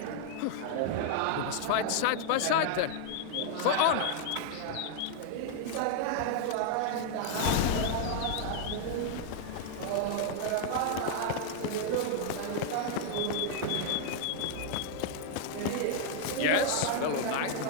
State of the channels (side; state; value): both; different; correlation -0.01